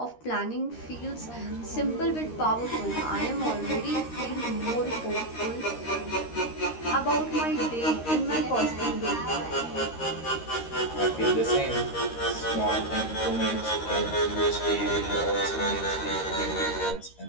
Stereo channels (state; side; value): late; right; 13 ms